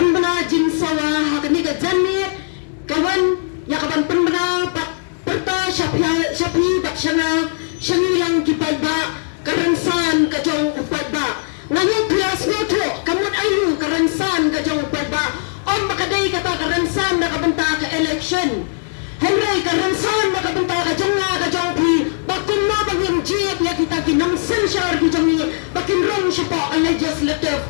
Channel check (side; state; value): right; silent; digital silence